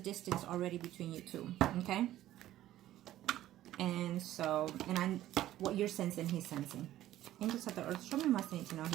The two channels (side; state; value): left; quieter; 13.8 dB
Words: already between you two. Okay? And so, what you're sensing, he's sensing. Angels of the earth, show me what I need to know